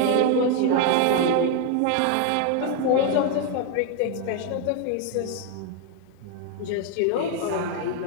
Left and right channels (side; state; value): both; different; correlation 0.01